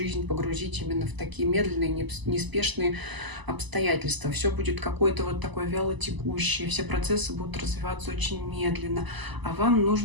погрузить именно в такие медленные, неспешные обстоятельства. Все будет какое-то вот такое вяло текущее, все процессы будут развиваться очень медленно, а вам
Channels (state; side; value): late; left; 1.0 ms